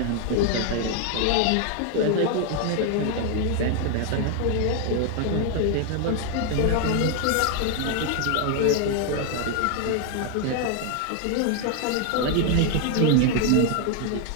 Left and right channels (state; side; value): different; both; correlation 0.01